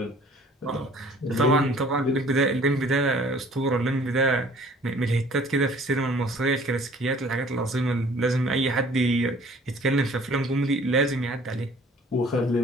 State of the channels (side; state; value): both; normal; correlation 0.53